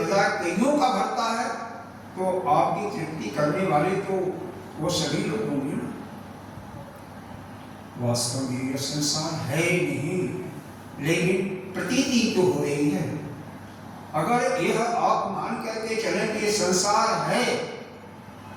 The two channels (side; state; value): both; identical; correlation 1.00